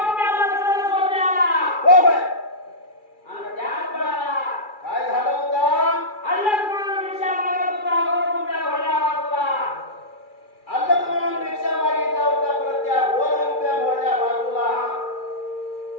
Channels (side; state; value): right; late; 2.3 ms